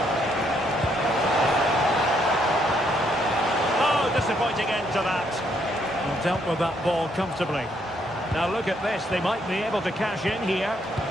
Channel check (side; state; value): both; normal; correlation 0.72